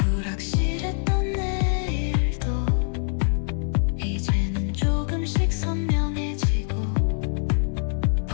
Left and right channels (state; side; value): silent; right; 62 dB below the other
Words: 내일도 이제는 조금씩 선명해지고